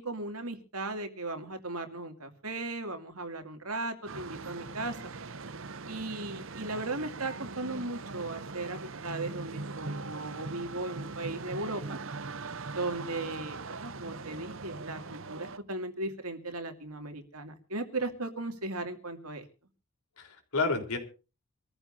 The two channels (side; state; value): both; normal; correlation -0.11